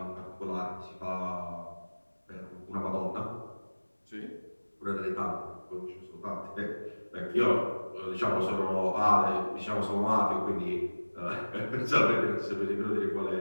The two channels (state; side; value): inverted; both; correlation -1.00